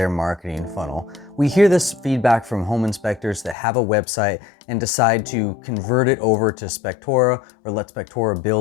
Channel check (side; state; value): right; drops out; at 3.6 s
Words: marketing funnel. We hear this feedback from home inspectors that have a website and decide to convert it over to Spectora or let Spectora